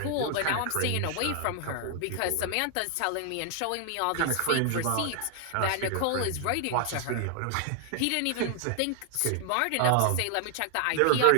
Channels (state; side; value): different; both; correlation 0.00